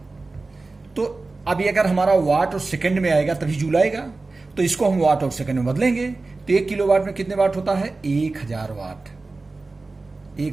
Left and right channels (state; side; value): quieter; left; 3.5 dB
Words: तो अभी अगर हमारा वाट और सेकंड में आएगा तभी जूल आएगा, तो इसको हम वाट और सेकंड में बदलेंगे। तो 1 किलोवाट में कितने वाट होता है 1000 वाट।